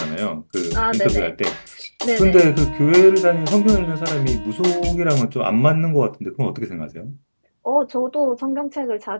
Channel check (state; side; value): inverted; both; correlation -1.00